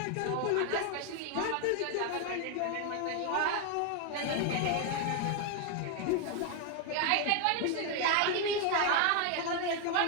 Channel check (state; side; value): different; both; correlation 0.01